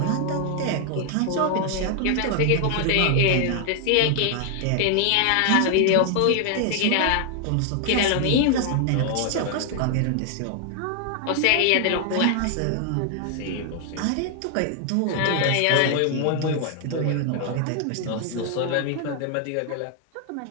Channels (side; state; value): both; different; correlation 0.00